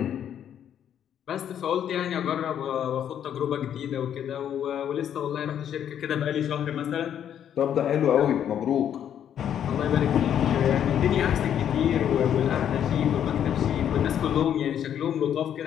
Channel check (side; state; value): right; quieter; 9.6 dB